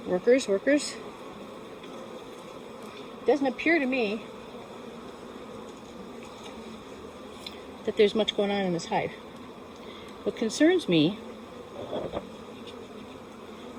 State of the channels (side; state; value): both; identical; correlation 1.00